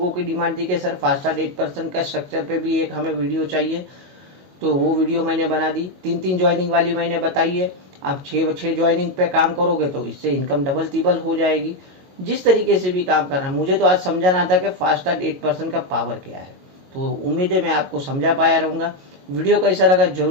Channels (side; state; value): left; late; 22 ms